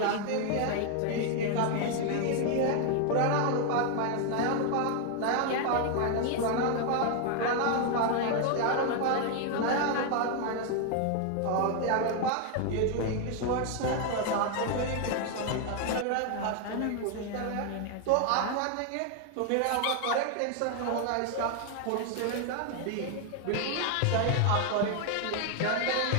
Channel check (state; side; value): different; both; correlation 0.00